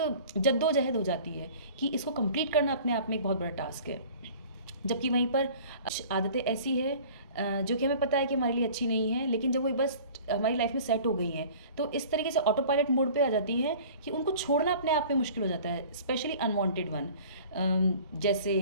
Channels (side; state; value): both; inverted; correlation -0.46